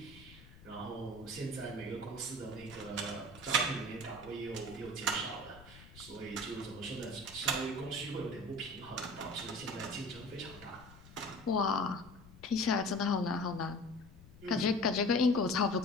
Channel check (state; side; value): noise; left; rumble, 19 dB below the sound